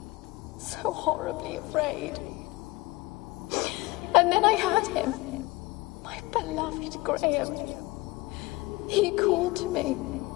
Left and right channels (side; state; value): right; quieter; 21.5 dB